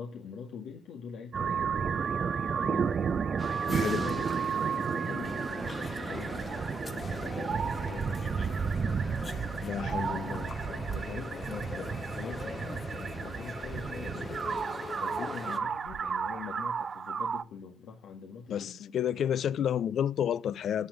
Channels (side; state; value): both; normal; correlation 0.75